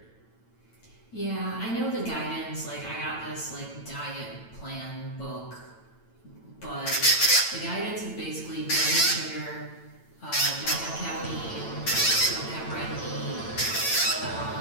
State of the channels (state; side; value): late; right; 8.9 ms